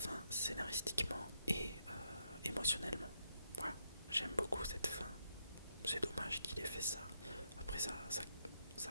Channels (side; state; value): both; inverted; correlation -0.79